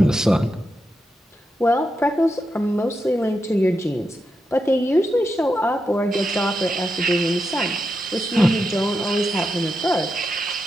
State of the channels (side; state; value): both; normal; correlation 0.86